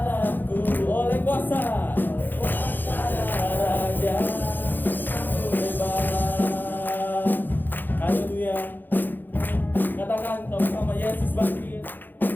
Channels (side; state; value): right; late; 0.090 ms